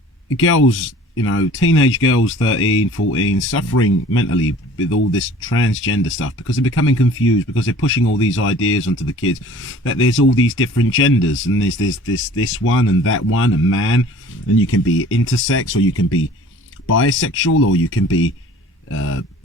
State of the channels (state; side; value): normal; both; correlation 0.48